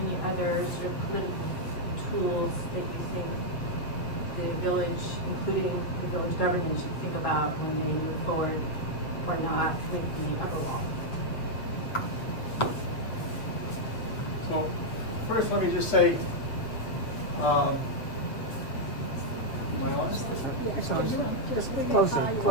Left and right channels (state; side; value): late; right; 7.8 ms